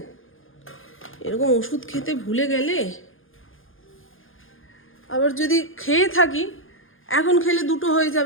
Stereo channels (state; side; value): late; right; 0.59 ms